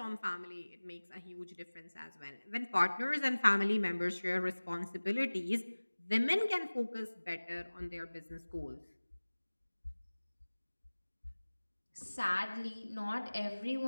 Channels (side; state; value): both; inverted; correlation -1.00